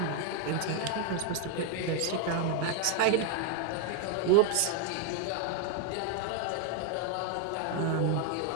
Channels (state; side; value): different; both; correlation 0.01